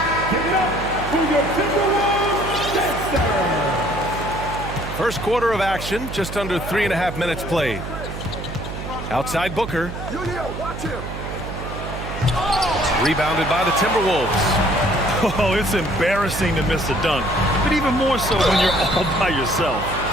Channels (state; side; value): noise; right; hum, 8 dB below the sound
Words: First quarter of action, just under 3.5 minutes played. Outside Booker. Rebounded by the Timberwolves. Oh, it's embarrassing to miss a dunk, but even more so when you're all by yourself.